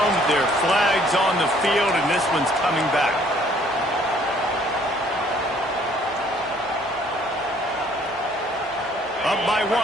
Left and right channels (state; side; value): normal; both; correlation 0.60